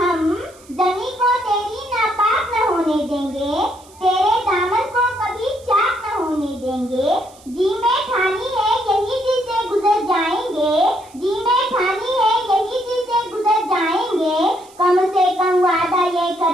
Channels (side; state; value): right; noise; hiss, 25 dB below the sound